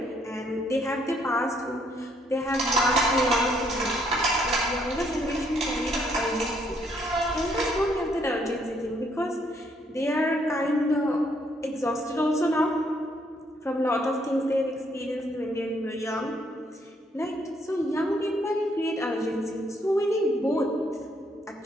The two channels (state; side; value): normal; both; correlation 0.70